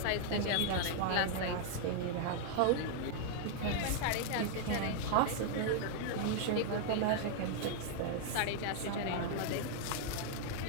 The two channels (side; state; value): both; different; correlation 0.00